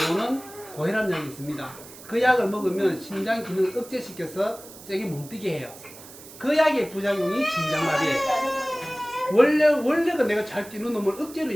고혈압 약이 있습니다. 그 약을 먹으면 심장 기능을 억제시켜서 세게 못 뛰게 해요. 그 약의 부작용이 심장마비예요. 원래가 내가 잘 뛰는 놈을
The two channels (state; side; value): noise; right; hiss, 18 dB below the sound